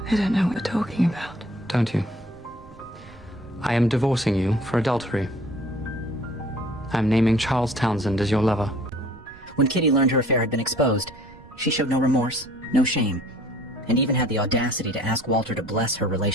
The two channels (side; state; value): right; noise; rumble, 22 dB below the sound